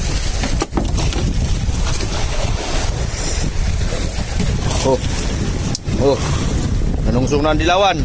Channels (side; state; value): both; identical; correlation 1.00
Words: Oh. Nanungsong na ang dilawan.